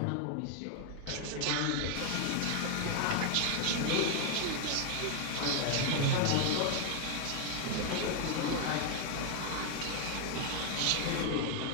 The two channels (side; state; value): both; different; correlation 0.00